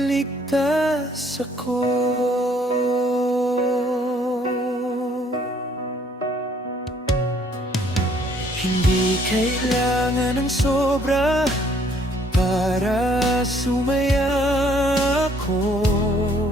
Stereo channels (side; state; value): both; normal; correlation 0.63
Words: ako. Hindi kailangan ng sobra para sumaya ako.